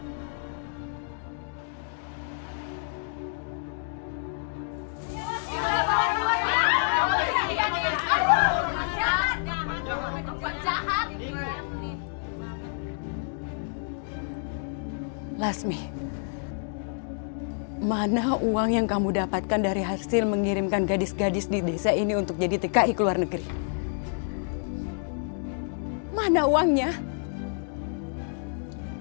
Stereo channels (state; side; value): silent; right; digital silence